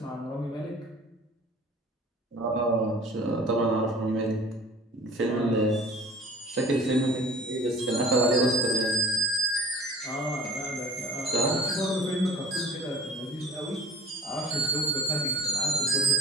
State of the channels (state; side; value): normal; both; correlation 0.46